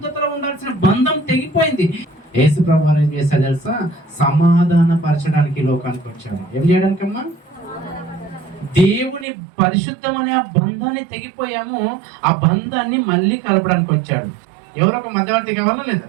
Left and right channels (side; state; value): left; drops out; at 9.2 s